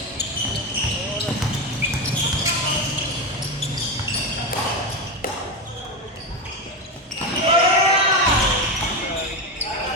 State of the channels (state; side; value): normal; both; correlation 0.16